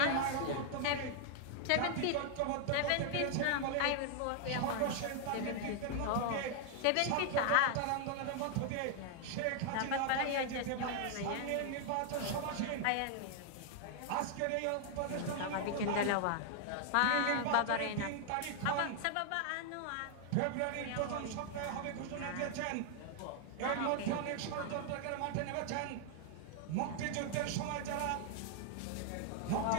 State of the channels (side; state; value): both; different; correlation 0.00